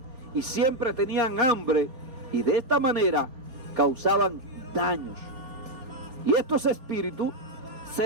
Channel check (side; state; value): left; late; 4.3 ms